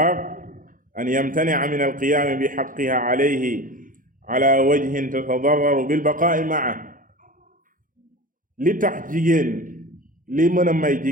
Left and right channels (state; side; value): late; left; 0.39 ms